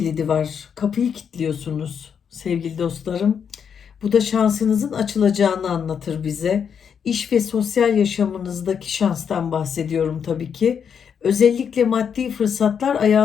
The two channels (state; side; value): quieter; right; 7.3 dB